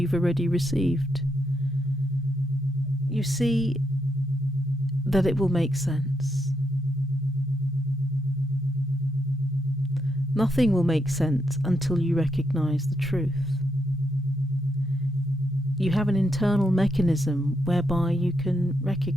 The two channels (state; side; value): normal; both; correlation 0.80